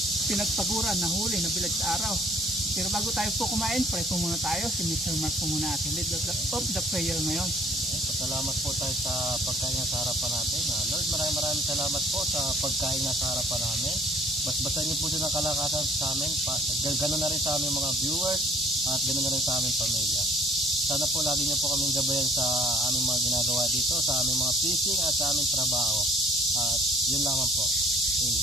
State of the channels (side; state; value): both; normal; correlation 0.56